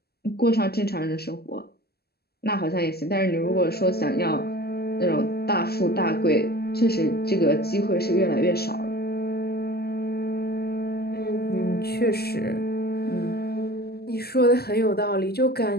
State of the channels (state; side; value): late; right; 0.46 ms